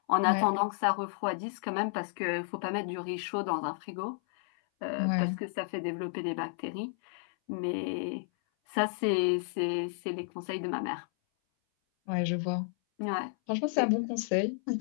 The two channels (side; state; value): right; silent; 56 dB below the other